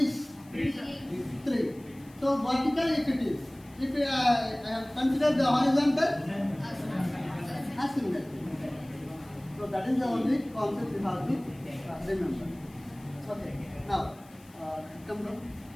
3 so vertical if it is if I have considered the horizontal asymmetric so that is the only concept you have to remember. Okay, now come down.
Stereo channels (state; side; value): noise; left; hiss, 27 dB below the sound